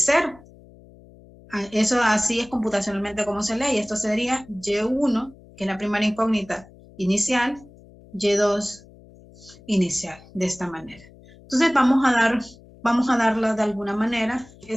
Eso así es computacionalmente como se lee, y esto sería Y1, que es la primera incógnita inicial, Y2 inicial, de esta manera. Entonces vamos a darla de alguna manera.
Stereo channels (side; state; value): left; noise; hum, 23 dB below the sound